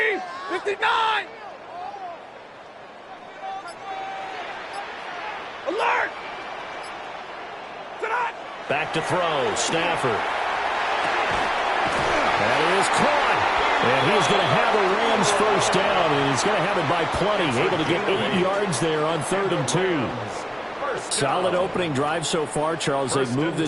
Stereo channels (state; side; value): identical; both; correlation 1.00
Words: 59. Alert! Back to throw. Stafford. That is caught. And he's going to have a Rams first down. And he's going to have it by plenty. Able to get 8 yards there on 3rd and 2. Solid opening drive so far, Charles. They've moved